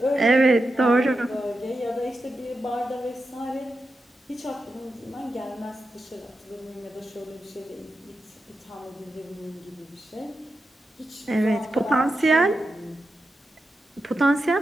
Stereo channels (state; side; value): normal; both; correlation 0.89